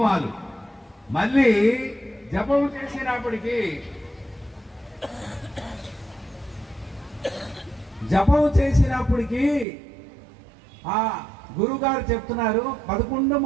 మళ్ళీ జపము చేసినప్పటికీ ఆ గురుగారు చెప్తున్నారు 11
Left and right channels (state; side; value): drops out; left; at 9.7 s